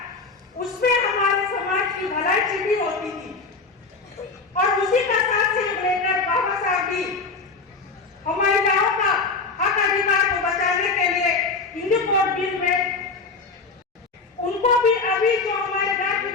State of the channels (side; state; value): right; quieter; 4.2 dB